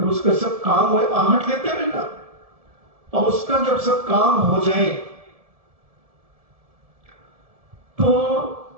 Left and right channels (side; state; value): left; late; 1.7 ms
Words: उसका सब काम हो, आहट लेते रहना, और उसका जब सब काम हो जाए तो